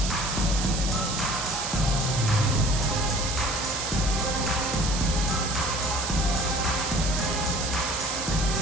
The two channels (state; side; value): noise; right; hiss, 4 dB below the sound